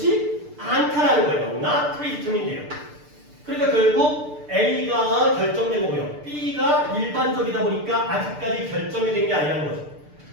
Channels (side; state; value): left; late; 6.7 ms